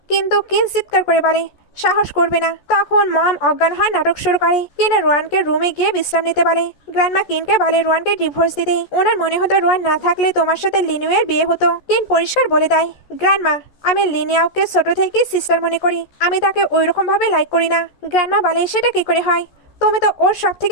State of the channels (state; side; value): late; right; 14 ms